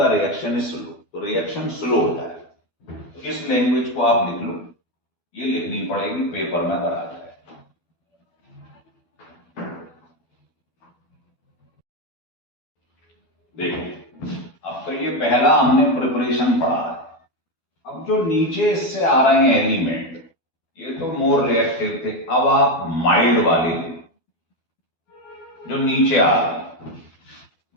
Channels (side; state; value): right; late; 12 ms